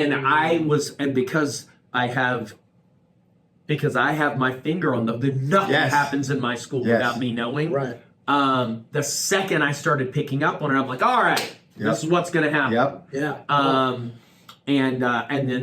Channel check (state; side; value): identical; both; correlation 1.00